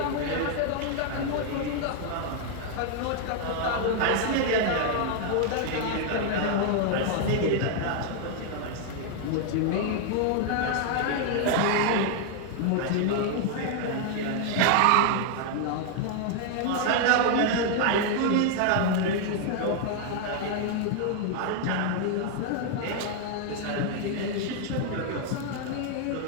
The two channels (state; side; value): different; both; correlation 0.00